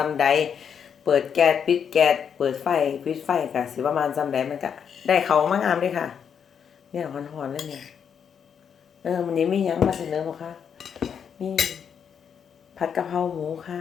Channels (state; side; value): quieter; right; 7.5 dB